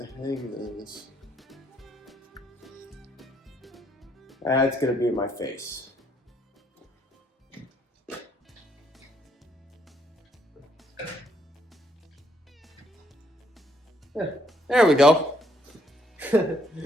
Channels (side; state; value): both; normal; correlation 0.70